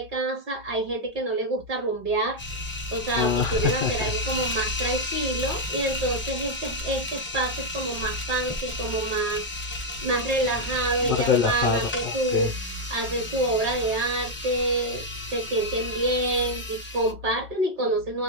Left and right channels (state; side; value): normal; both; correlation -0.01